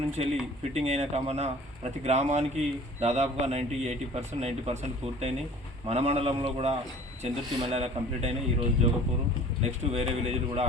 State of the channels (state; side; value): normal; both; correlation 0.47